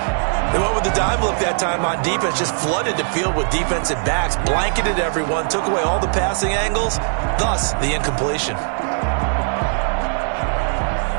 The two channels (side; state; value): left; silent; 66 dB below the other